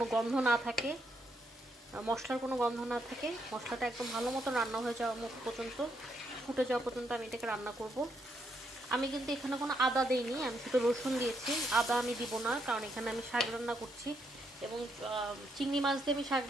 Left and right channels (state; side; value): normal; both; correlation 0.76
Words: গন্ধ না থাকে, মশলার কোনো গন্ধ না থাকে। মশলাটা একদম ভালো মতন রান্না হয়ে যাওয়া পর্যন্ত, ফুটে যাওয়া পর্যন্ত আমি এটাকে রান্না করব। আমি কিন্তু এখানে কোনো আদা দিইনি, আমি শুধু রসুন দিয়েছি। আদা আমি দিব না, কারণ এখানে আমি শাক রান্না করছি এবং চিংড়ি মাছ দিয়ে আমি শাক